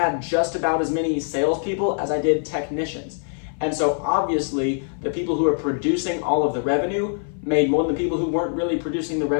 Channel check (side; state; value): right; silent; 58 dB below the other